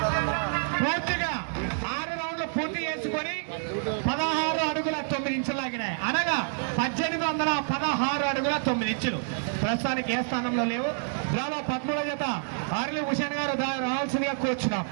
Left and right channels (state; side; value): silent; left; digital silence